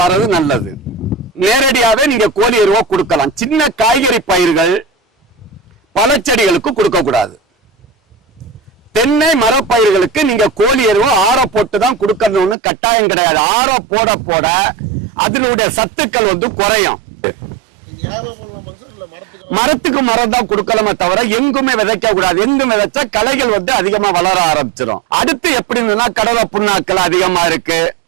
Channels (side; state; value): left; drops out; at 12.6 s